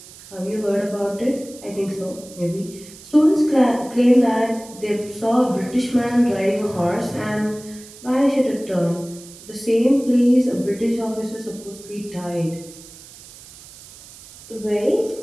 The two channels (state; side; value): noise; right; hiss, 19 dB below the sound